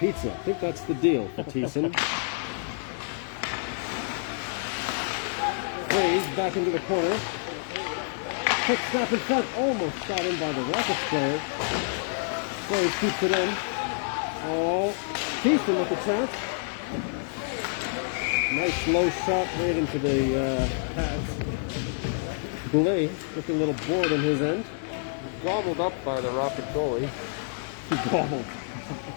I think that's the deal for Thiessen. Back into the corner. Quick snap in front. Almost shot in by the Rockets player. Blaze keeps it in. Oh, Thiessen with a chance. Nice low shot right into the pads. Goulet with a little board in his end. Gobbled up by the Rocket goalie. He gobbled.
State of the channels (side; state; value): right; silent; digital silence